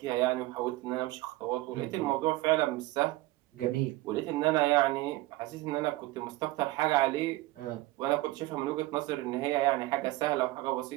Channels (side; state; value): left; quieter; 18.4 dB